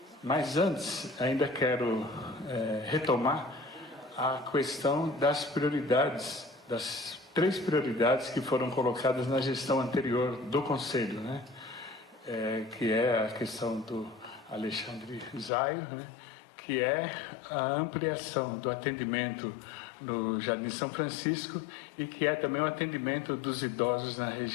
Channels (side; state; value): right; drops out; at 15.5 s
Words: Mas antes, ainda quero retomar a questão das prioridades, das 3 prioridades que foram colocadas na gestão anterior do Conselho, né? Que é a questão do Alexandre Zaio, né? Que é a ampliação do atendimento no Jardim São Francisco e que é também o atendimento dos idosos na